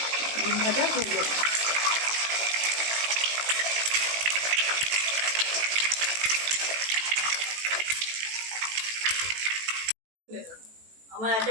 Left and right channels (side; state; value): left; late; 18 ms